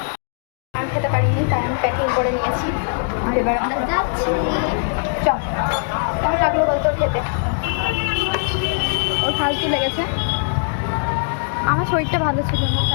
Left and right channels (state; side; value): silent; right; digital silence